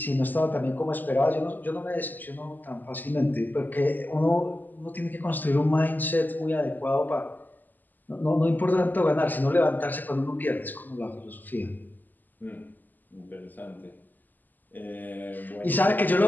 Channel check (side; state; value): right; late; 0.086 ms